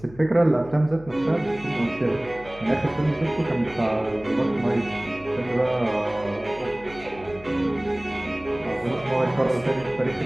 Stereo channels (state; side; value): noise; left; hum, 19 dB below the sound